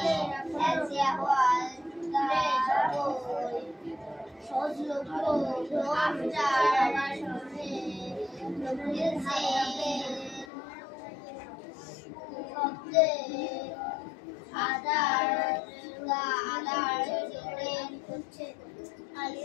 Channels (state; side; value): drops out; right; at 10.5 s